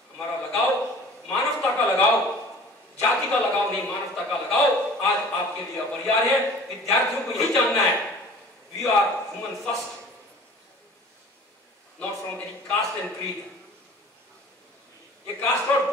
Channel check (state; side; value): normal; both; correlation 0.45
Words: हमारा लगाव, मानवता का लगाव, जाति का लगाव नहीं, मानवता का लगाव आज आपके लिए अपरिहार्य है। विद्यार्थियों को यही जानना है, we are human first, not from any caste and creed. ये कास्ट और